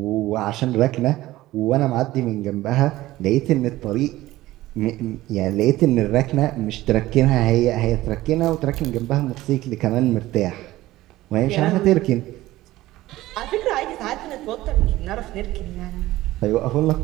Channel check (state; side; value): quieter; left; 16.7 dB